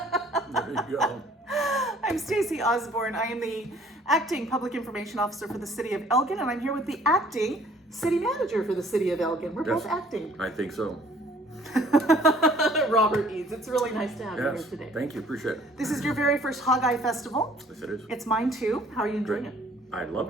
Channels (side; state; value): both; normal; correlation 0.57